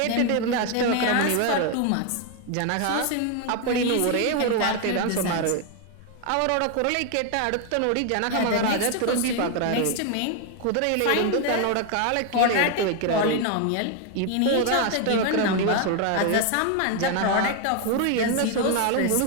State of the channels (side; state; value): both; different; correlation 0.01